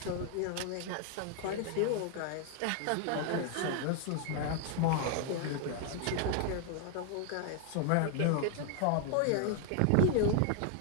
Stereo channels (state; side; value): different; both; correlation 0.00